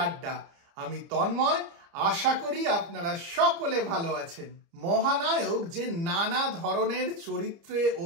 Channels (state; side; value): late; left; 30 ms